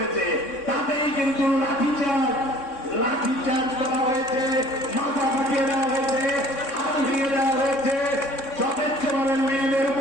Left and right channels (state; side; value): late; right; 3.6 ms